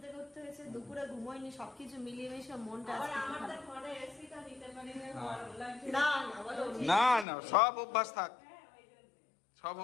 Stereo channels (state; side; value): drops out; right; at 7.2 s